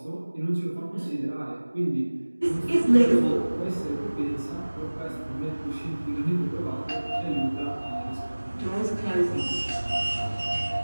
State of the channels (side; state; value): both; inverted; correlation -1.00